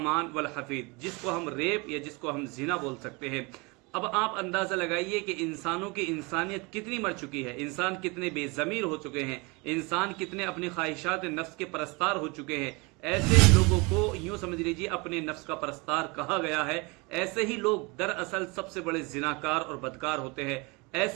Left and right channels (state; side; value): quieter; left; 27.4 dB